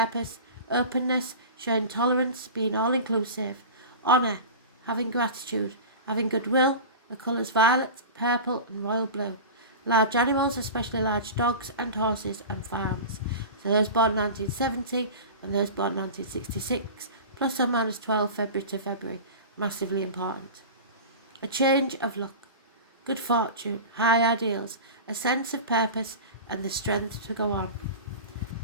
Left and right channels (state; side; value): inverted; both; correlation -0.31